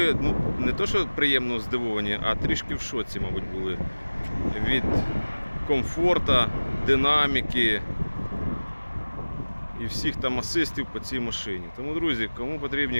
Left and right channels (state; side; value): inverted; both; correlation -1.00